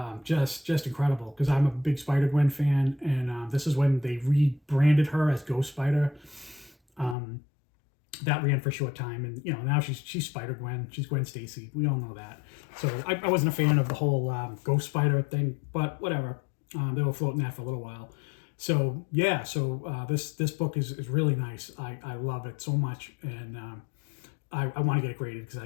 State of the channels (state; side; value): drops out; right; at 7.2 s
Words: Just incredible, because I'm a big Spider-Gwen fan, and this is when they rebranded her as Ghost Spider. That ran for a short time, and now she's Spider-Gwen. She's Gwen Stacy. We all know that. So I wasn't a fan of the whole Ghost Spider thing, but whatever. They were floating that for a little while. So yeah, this book is really nice. I love it so much, and I want to get it graded,